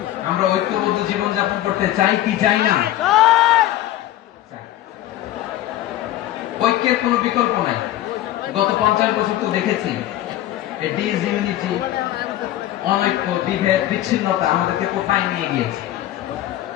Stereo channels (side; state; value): right; quieter; 13.9 dB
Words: আমরা ঐক্যবদ্ধ জীবন যাপন করতে চাই কি চাই না? ঐক্যের কোনো বিকল্প নাই। গত 50 বছর তো দেখেছি ডিসইউনিটি, অনৈক্য, বিভেদ, বিচ্ছিন্নতা আমাদেরকে কোথায় নিয়ে গিয়েছে।